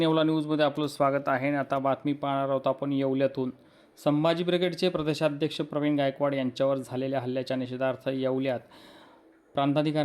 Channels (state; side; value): identical; both; correlation 1.00